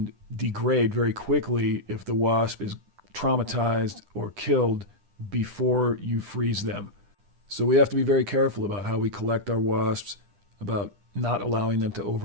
degrade very quickly if the wasp is traumatized or killed before you freeze them. So we have to be very careful about how we collect our wasps, about not allowing them to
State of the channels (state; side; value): late; left; 10 ms